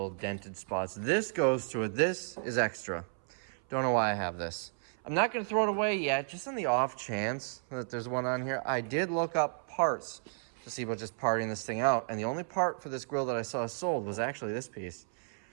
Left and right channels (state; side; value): silent; left; 56 dB below the other